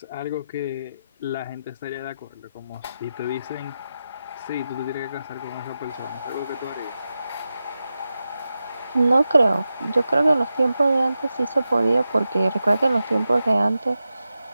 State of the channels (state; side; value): inverted; both; correlation -0.91